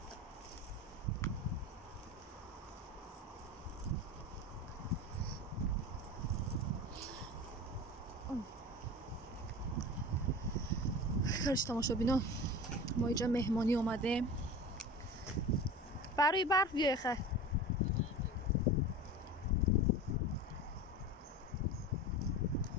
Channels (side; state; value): both; normal; correlation 0.33